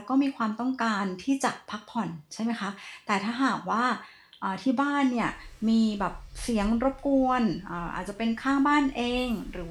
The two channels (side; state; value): both; identical; correlation 1.00